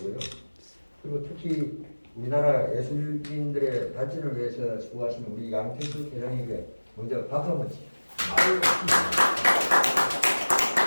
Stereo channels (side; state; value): both; inverted; correlation -1.00